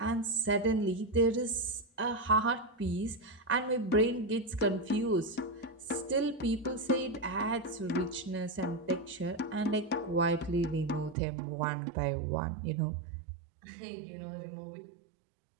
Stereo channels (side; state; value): left; drops out; at 11.2 s